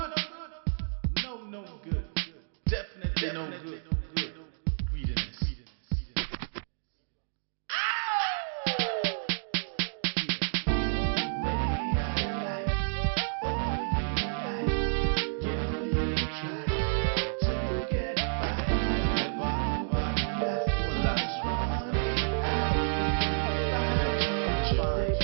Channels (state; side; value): silent; left; digital silence